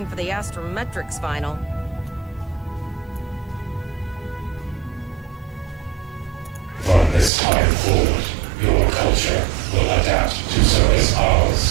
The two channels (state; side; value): drops out; left; at 7.3 s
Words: for the astrometrics final. From this time forward, your culture will adapt to service